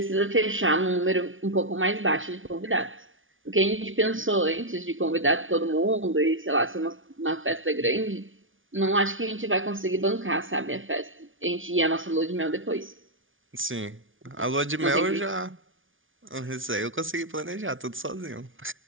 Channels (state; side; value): late; left; 0.57 ms